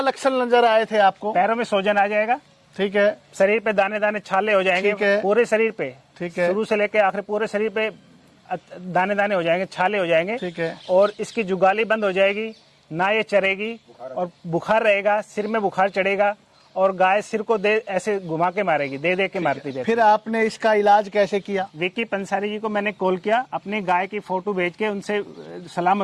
नजर आए थे आपको? पैरों में सोजन आ जाएगा, ठीक है। शरीर पे दाने दाने छाले हो जाएंगे, पूरे शरीर पे, ठीक है, शुरू से लेकर आखिर पूरे शरीर पे दाने दाने हो जाएंगे, छाले हो जाएंगे, ठीक है। और इसकी जुगाली बंद हो जाएगी, ना ये चरेगी और बुखार रहेगा, सिर में बुखार चढ़ेगा और गाय सिर को दे ऐसे घुमा के मारेगी, दे दे के मारती जाएगी। फिर आपने इसका इलाज कैसे किया? विकी पंसारी जी को मैंने कॉल किया, अपनी गाय की फोटो भेज के उनसे सलाह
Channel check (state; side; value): identical; both; correlation 1.00